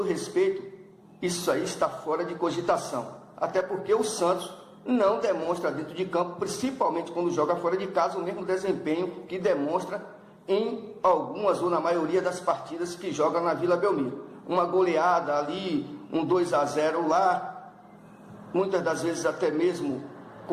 respeito, isso aí está fora de cogitação. Até porque o Santos não demonstra dentro de campo, principalmente quando joga fora de casa, o mesmo desempenho que demonstra em algumas ou na maioria das partidas que joga na Vila Belmiro. Uma goleada ali, um 2-0 lá, muitas das vezes até mesmo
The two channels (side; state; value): both; identical; correlation 1.00